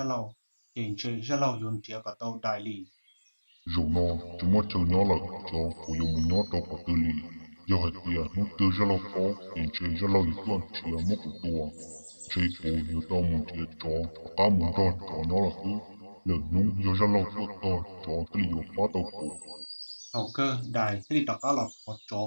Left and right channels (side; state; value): both; inverted; correlation -1.00